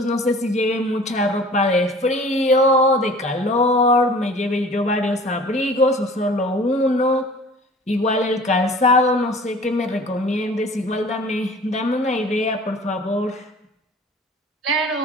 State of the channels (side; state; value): both; normal; correlation 0.46